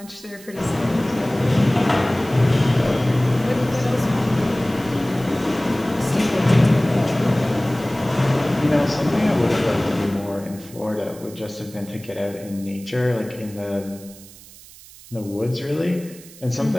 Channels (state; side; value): noise; right; hiss, 20 dB below the sound